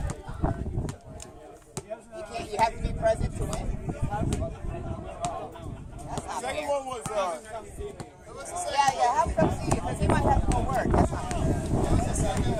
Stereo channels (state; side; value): identical; both; correlation 1.00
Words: You have to be present to win. Second one was, Yeah, have him come see you because he might have to go work. That's not fair.